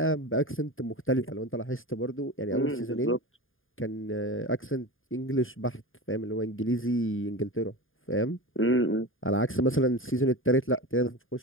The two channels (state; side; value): late; right; 0.59 ms